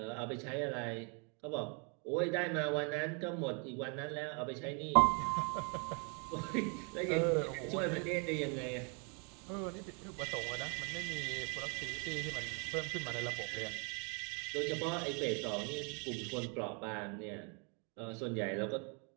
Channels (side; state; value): left; quieter; 35.9 dB